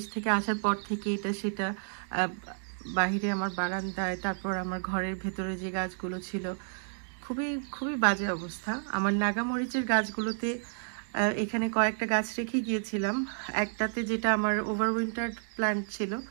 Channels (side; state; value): left; silent; digital silence